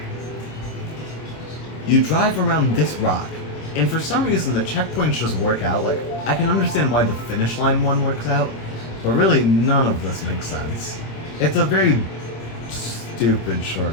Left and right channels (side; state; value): right; late; 26 ms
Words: You drive around this rock, and for some reason the checkpoints just work out. Like, I can understand why the finish line one works out, but really none of this makes sense. It's a very stupid